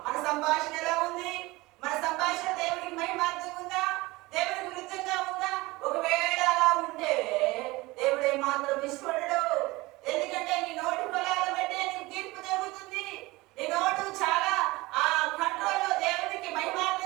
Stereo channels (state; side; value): quieter; left; 21.4 dB